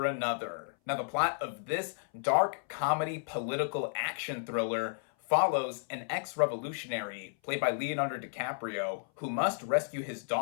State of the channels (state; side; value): silent; right; 56 dB below the other